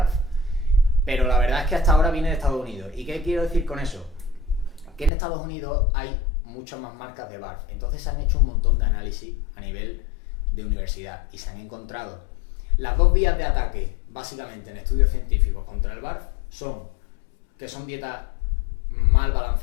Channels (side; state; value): right; drops out; at 5.1 s